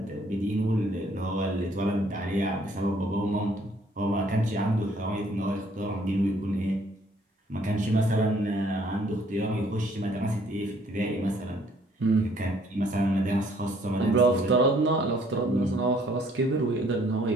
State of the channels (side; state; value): both; normal; correlation 0.63